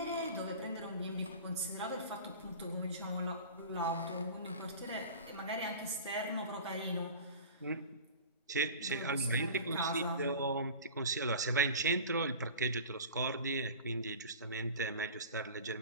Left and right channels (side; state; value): both; inverted; correlation -0.37